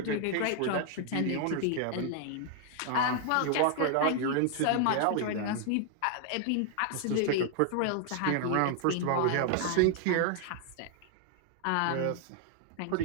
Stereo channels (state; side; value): different; both; correlation 0.00